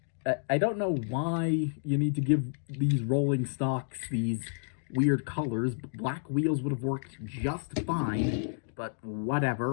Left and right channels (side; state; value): right; silent; digital silence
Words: I don't know why you need to give these rolling stocks these weird colors. Black wheels would have worked just fine, but